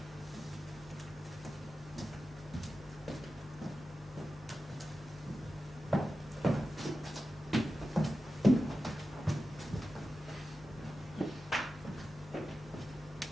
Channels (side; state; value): both; normal; correlation 0.92